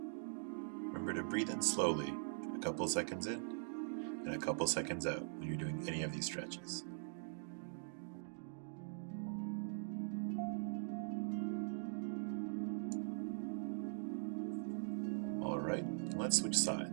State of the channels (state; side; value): silent; left; digital silence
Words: Remember to breathe in slowly, a couple seconds in, and a couple seconds out when you're doing any of these stretches. Alright, let's switch